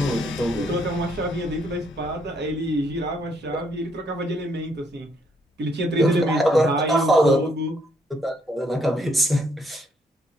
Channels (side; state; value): both; normal; correlation 0.71